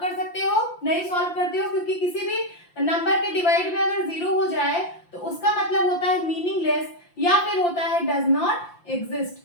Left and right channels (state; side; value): late; right; 5.8 ms